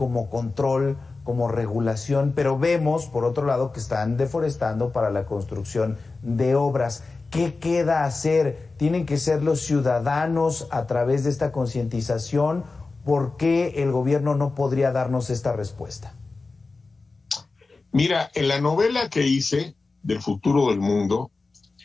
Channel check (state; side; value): quieter; right; 3.8 dB